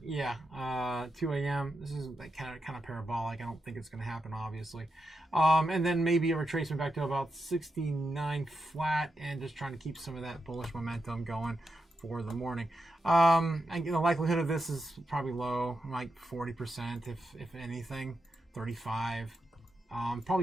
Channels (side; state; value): both; normal; correlation 0.87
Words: 2 a.m. This is like kind of parabolic. I don't think it's going to happen, obviously. And then maybe a retracement back to about 69 flat, and just trying to keep some of that bullish momentum going for the morning. The likelihood of this is probably low, like 40%, if anything, 35.